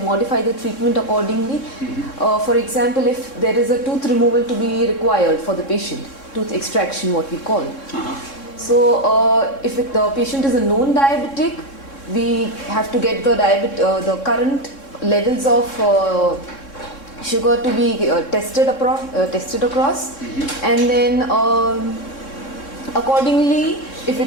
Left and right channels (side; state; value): right; late; 3.6 ms